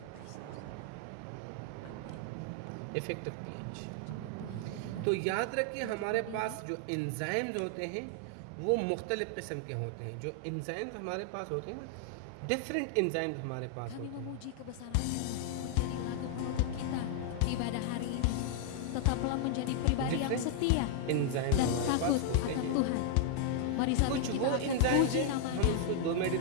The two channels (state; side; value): different; both; correlation 0.00